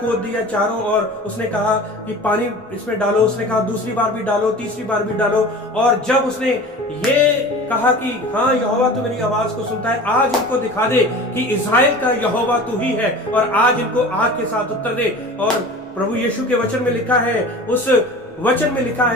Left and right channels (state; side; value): normal; both; correlation 0.38